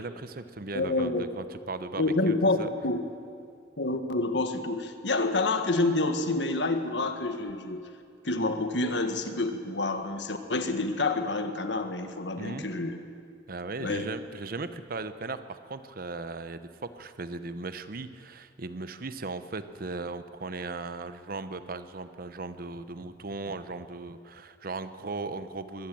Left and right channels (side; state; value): both; normal; correlation 0.12